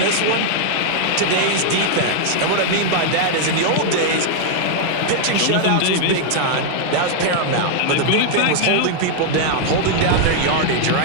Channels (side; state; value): both; different; correlation -0.01